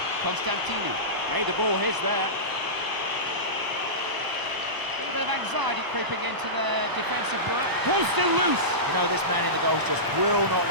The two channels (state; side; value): late; left; 1.0 ms